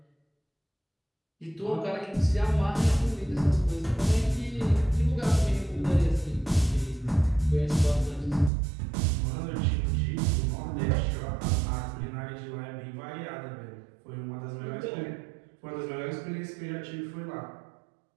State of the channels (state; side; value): drops out; left; at 8.5 s